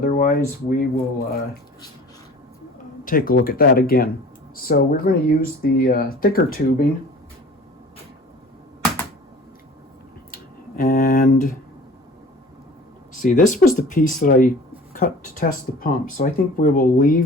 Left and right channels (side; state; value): both; normal; correlation 0.44